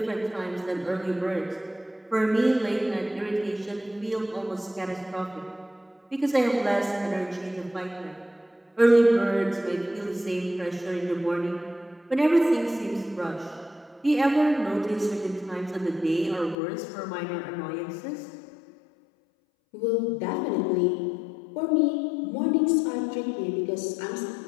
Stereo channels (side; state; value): right; drops out; at 16.6 s